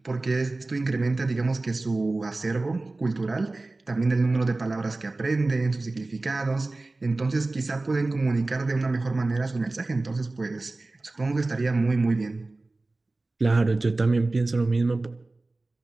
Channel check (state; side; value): quieter; left; 3.2 dB